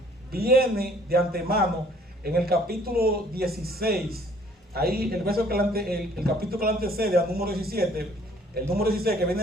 viene de antemano en el capítulo 16. Ahí el verso el capítulo que le antecede al número 17, el número 16 que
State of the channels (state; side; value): normal; both; correlation 0.58